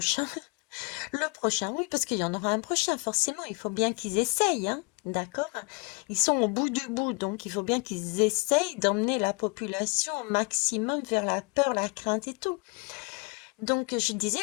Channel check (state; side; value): quieter; right; 31.4 dB